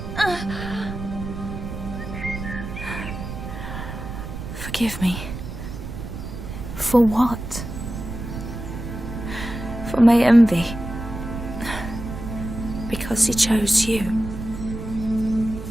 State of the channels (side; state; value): right; noise; rumble, 8 dB below the sound